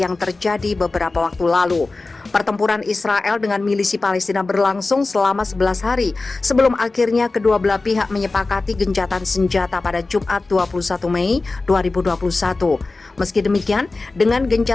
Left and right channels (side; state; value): right; quieter; 3.5 dB